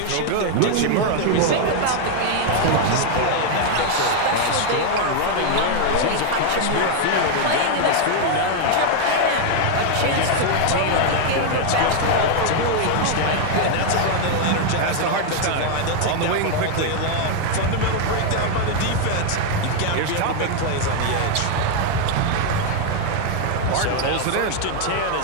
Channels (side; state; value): both; different; correlation 0.00